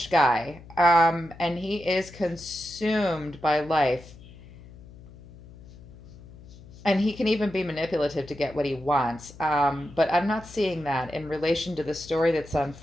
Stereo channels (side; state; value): left; noise; hum, 20 dB below the sound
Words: guy, and he is consumed by life. And he can even be manipulative to get what he wants. But I'm not seeing that in relation to the story that's